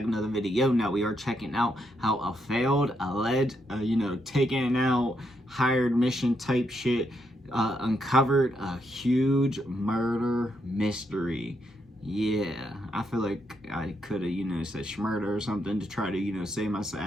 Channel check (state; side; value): normal; both; correlation 0.79